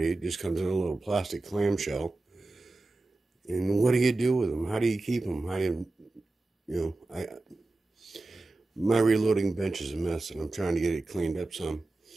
it just comes in a little plastic clamshell. And what do you do with them? How do you keep them? How do my reloading bench is a mess, and I'm trying to get it cleaned up some.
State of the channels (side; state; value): left; quieter; 3.1 dB